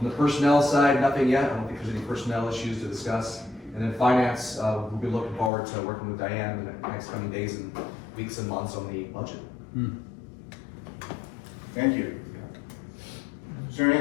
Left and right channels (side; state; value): right; drops out; at 5.5 s